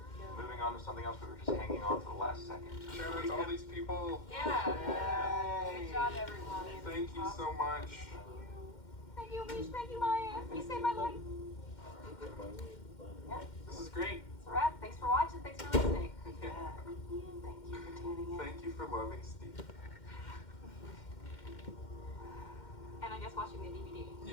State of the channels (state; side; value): late; right; 2.1 ms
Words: moving on to something else, we were just hanging on to the last second. Shout out to all these people. Yeah. Good job, everyone. Thank you so much. Thank you, Mish. Thank you, Maya. You saved my life. Yeah, This is great. it's a wrap. Thanks for watching. Thanks for listening. Yeah. Thank you for tuning in. Thank you for loving Steve. And I guess watching the DVD.